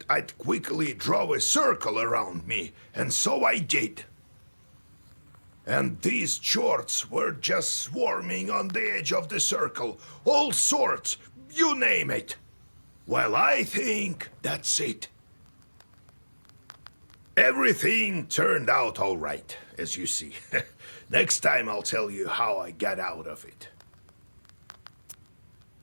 I'd quickly draw a circle around me, and so I did. And these chorts were just swarming on the edge of the circle, all sorts, you name it. Well, I think that's it. Everything turned out all right, as you see. Next time I'll tell you how I got out of it.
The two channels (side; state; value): both; inverted; correlation -1.00